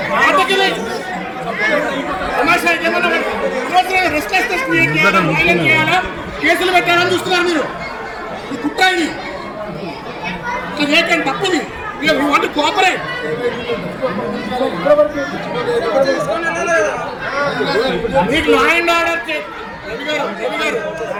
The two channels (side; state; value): both; identical; correlation 1.00